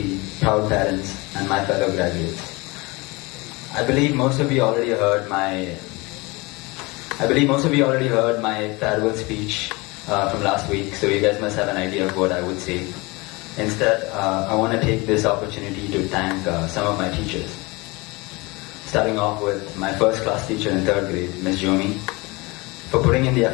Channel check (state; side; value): quieter; right; 24.8 dB